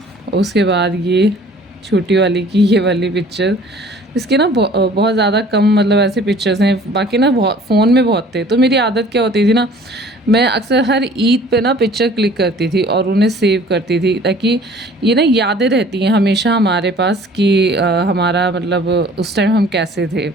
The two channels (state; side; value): normal; both; correlation 0.51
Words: उसके बाद ये छोटी वाली की ये वाली पिक्चर। इसके ना बहुत ज़्यादा कम, मतलब ऐसे पिक्चर्स हैं। बाकी ना बहुत फ़ोन में बहुत थे। तो मेरी आदत क्या होती थी ना, मैं अक्सर हर ईद पे ना पिक्चर क्लिक करती थी और उन्हें सेव करती थी, ताकि ये ना यादें रहती हैं हमेशा हमारे पास कि हमारा मतलब उस टाइम हम कैसे थे।